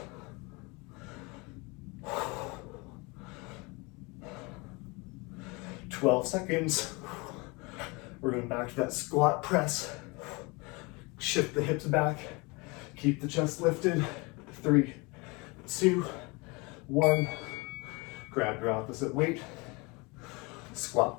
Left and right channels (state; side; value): quieter; right; 27.1 dB